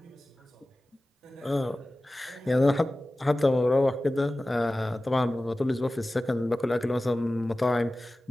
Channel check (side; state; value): both; normal; correlation 0.96